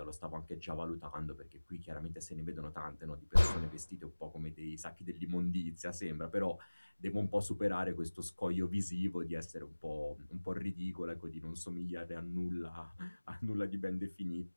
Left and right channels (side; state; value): both; inverted; correlation -1.00